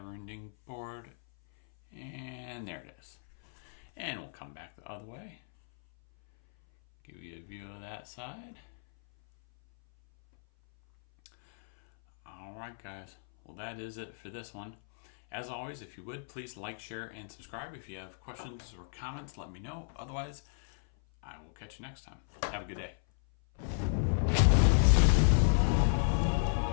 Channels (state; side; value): silent; right; 55 dB below the other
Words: board. And there it is. And we'll come back the other way. Give you a view of that side. Alright guys, well that is it for this one. As always, if you would, please like, share, and subscribe. If you have questions or comments, let me know. Otherwise, I will catch you next time. Have a good day.